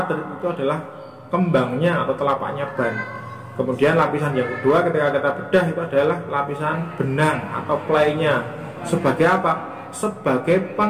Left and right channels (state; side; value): identical; both; correlation 1.00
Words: Tread itu adalah kembangnya atau telapaknya ban. Kemudian lapisan yang kedua ketika kita bedah itu adalah lapisan benang atau playnya. Sebagai apa? Sebagai